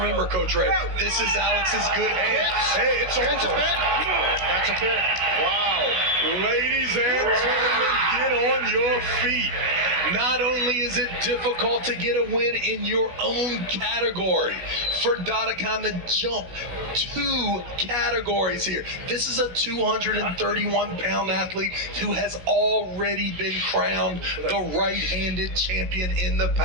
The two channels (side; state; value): left; late; 16 ms